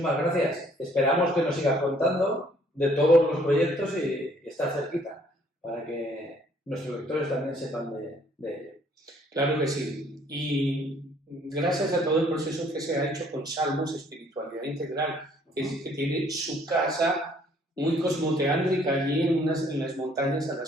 gracias. Esperamos que nos sigas contando de todos los proyectos y estar cerquita para que nuestros lectores también sepan de ello. Claro que sí. Y gracias a todo el proceso que se ha hecho con Salmos, Espiritualidad Integral, que tiene su casa muy cosmoteántrica allí en las montañas a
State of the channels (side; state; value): both; normal; correlation 0.62